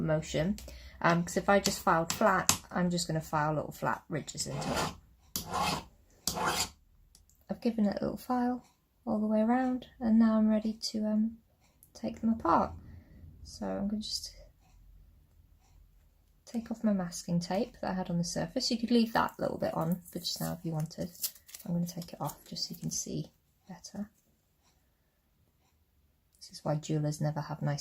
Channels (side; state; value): both; identical; correlation 1.00